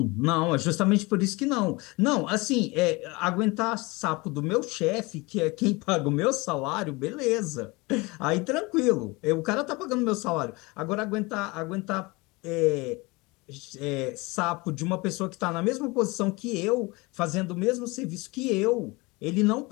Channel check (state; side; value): quieter; right; 24.7 dB